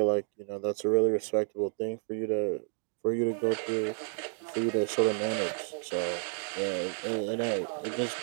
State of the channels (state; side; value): silent; left; 57 dB below the other